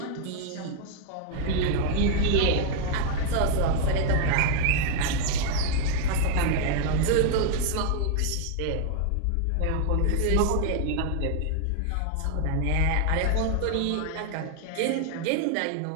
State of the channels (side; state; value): both; different; correlation 0.00